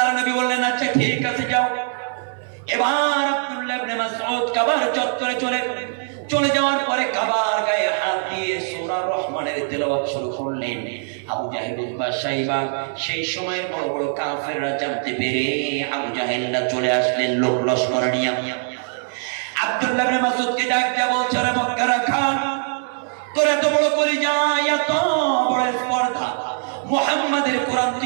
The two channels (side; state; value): left; silent; 64 dB below the other